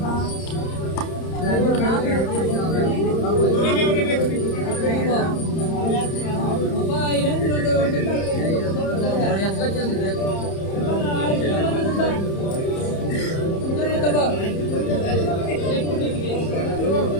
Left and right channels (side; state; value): right; late; 31 ms